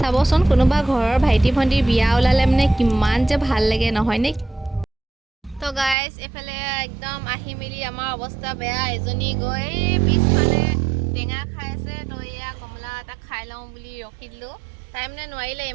কোনোবা ঘৰৰ ভাইটি ভণ্টিৰ বিয়া ওলালে মানে কিমান যে ভাল লাগে নহয়নে? তো গাইজ, এইফালে একদম আহি মেলি আমাৰ অৱস্থা বেয়া। এজনী গৈ পিছফালে টেঙা খাই আছে, তো এয়া কমলা এটা খাই লওঁ বুলি ৰখি দিলোঁ। তাই মানে নোৱাৰিলে,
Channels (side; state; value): left; drops out; at 6.0 s